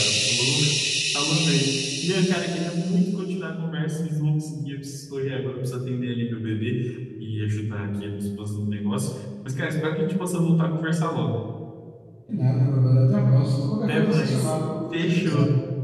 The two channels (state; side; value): identical; both; correlation 1.00